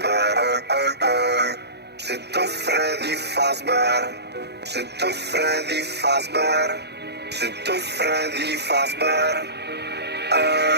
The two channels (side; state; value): left; late; 0.49 ms